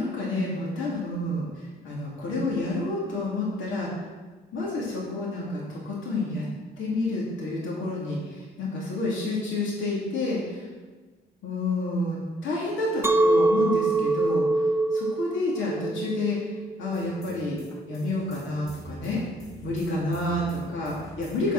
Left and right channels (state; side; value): normal; both; correlation 0.63